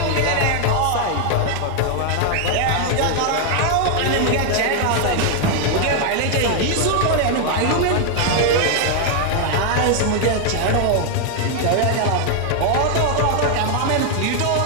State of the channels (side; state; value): both; different; correlation 0.00